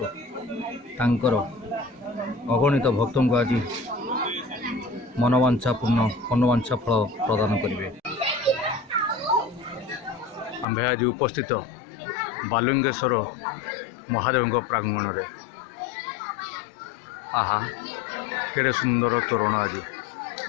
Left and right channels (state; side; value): drops out; right; at 10.7 s